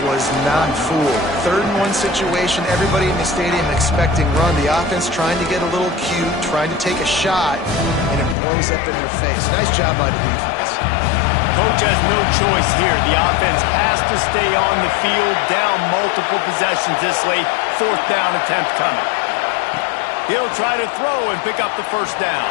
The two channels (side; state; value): right; drops out; at 8.3 s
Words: was not fooled. 3rd and 1 situation, everybody in the stadium expecting run. The offense trying to get a little cute, trying to take a shot, and it blows up in their face. Nice job by the defense. Coach has no choice here. The offense has to stay on the field, down multiple possessions this late. 4th down attempt coming. He'll try to throw and pick up the first down.